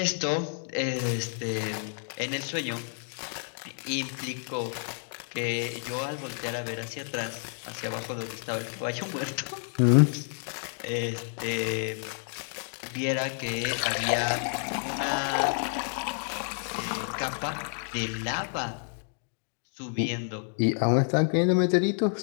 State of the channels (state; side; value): silent; right; 58 dB below the other